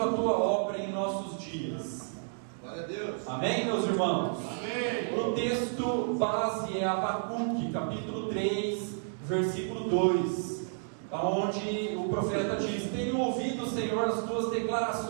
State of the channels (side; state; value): left; silent; digital silence